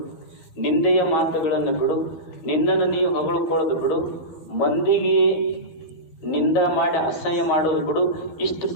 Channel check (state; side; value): late; right; 13 ms